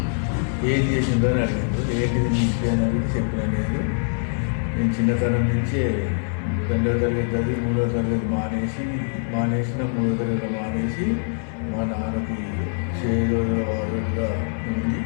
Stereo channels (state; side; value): silent; right; 63 dB below the other